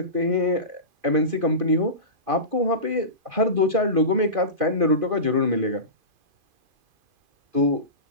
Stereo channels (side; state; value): left; late; 2.5 ms